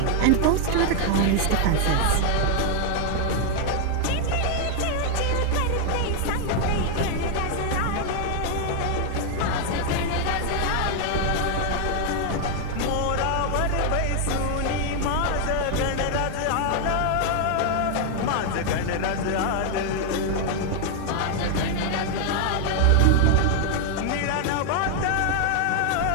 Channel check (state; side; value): different; both; correlation 0.00